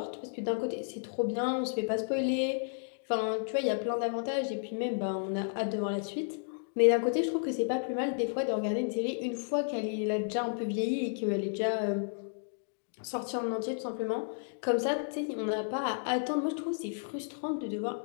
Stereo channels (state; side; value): silent; right; digital silence